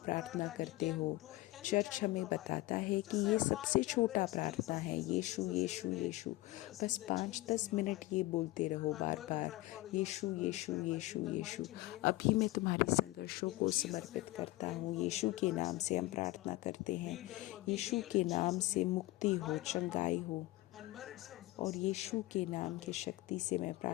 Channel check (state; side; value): quieter; right; 19.0 dB